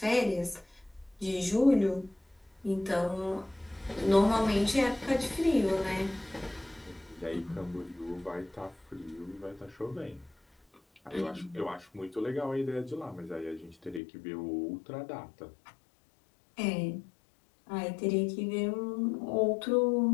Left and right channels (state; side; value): drops out; right; at 14.0 s